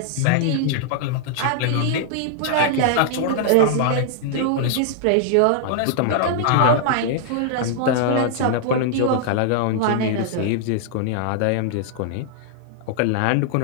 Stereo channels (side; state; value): both; different; correlation -0.01